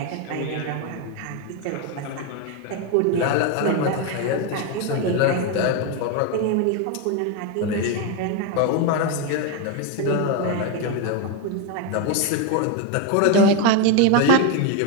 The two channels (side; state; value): both; different; correlation 0.02